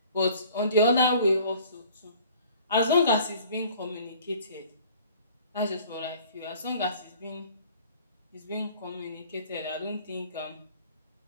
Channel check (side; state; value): both; inverted; correlation -0.51